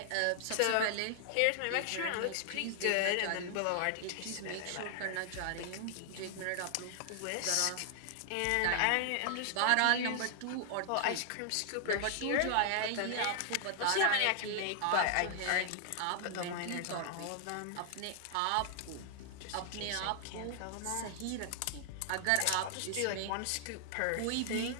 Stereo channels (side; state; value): both; different; correlation 0.00